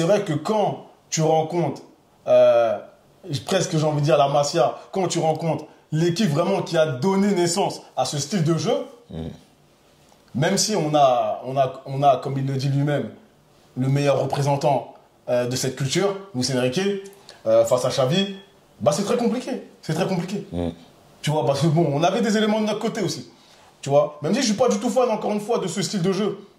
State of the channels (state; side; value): identical; both; correlation 1.00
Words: vrai que quand tu rencontres, presque j'ai envie de dire la Masia, quand tu rencontres l'équipe vraiment qui a donné naissance à ce style de jeu, même si on a, comme il le dit lui-même, le meilleur représentant de cette culture, Luis Enrique, face à Xavi, bah c'est très compliqué. Tu vois, parce que bon, on avait des éléments de notre côté aussi. Tu vois, même si je suis pas du tout fan, encore une fois, de ce style de jeu.